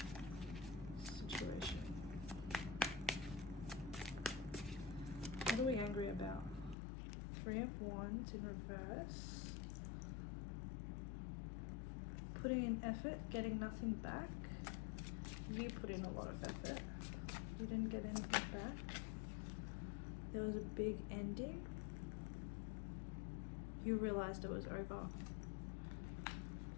situation? What are we angry about? Three of Wands in reverse. Putting in effort, getting nothing back. You put in a lot of effort. You didn't get anything back. There was a big ending. You realized it was over.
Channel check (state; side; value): drops out; right; at 6.8 s